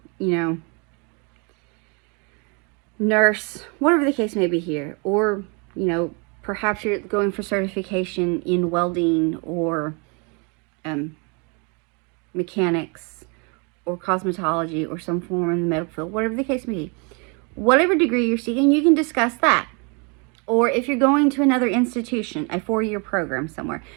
nurse, whatever the case may be here, or perhaps you're going for certification in welding or mechanics or cosmetology or some form in the medical field, whatever the case may be, whatever degree you're seeking, you can discuss that. Or if you're going to another institution, a 4-year program somewhere,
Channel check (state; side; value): quieter; left; 33.3 dB